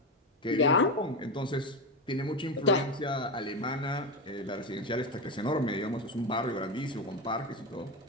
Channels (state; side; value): normal; both; correlation 0.16